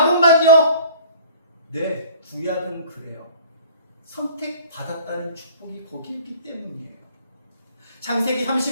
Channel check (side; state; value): both; inverted; correlation -0.49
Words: 네, 구약은 그래요. 선택받았다는 축복이 거기 있기 때문이에요. 창세기